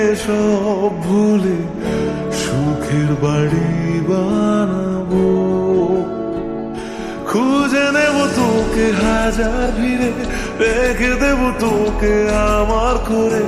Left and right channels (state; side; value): identical; both; correlation 1.00